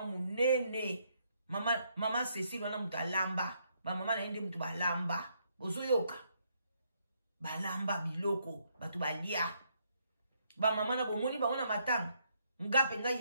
munene. Maman Cécile wana mutalamba. Ba maman na yende mutu balamba. Ozoyoka. Balamba biloko, batu balia. Ba maman na bomoni ba wana matanga. Ngape nga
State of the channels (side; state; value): both; inverted; correlation -0.73